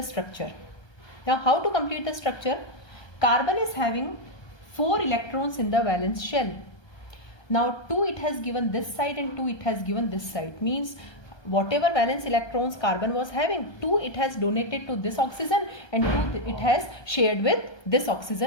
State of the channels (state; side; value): late; right; 1.2 ms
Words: structure. Now how to complete the structure? Carbon is having 4 electrons in the valence shell. Now 2 it has given this side and 2 it has given this side. Means whatever valence electrons carbon was having, 2 it has donated to this oxygen and 2 it has shared with this